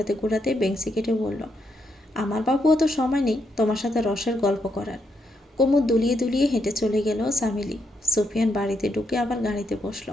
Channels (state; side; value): normal; both; correlation 0.79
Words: ঘোরাতে বেঞ্চি কেটে বলল, আমার বাবুও তো সময় নেই তোমার সাথে রসের গল্প করার। কোমর দুলিয়ে দুলিয়ে হেঁটে চলে গেল সামিলি। সুফিয়ান বাড়িতে ঢুকে আবার গাড়িতে বসল।